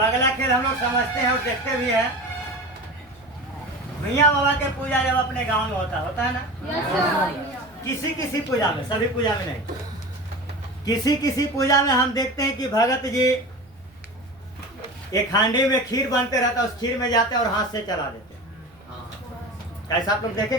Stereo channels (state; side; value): noise; right; rumble, 29 dB below the sound